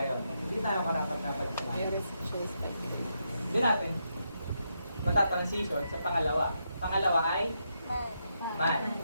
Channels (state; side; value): inverted; both; correlation -0.82